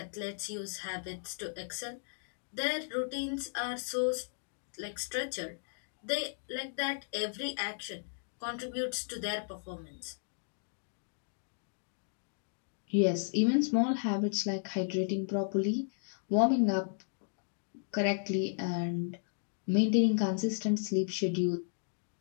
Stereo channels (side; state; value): right; silent; digital silence